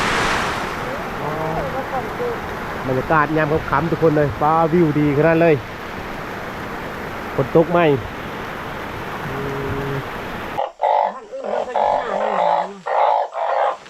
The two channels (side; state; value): both; identical; correlation 1.00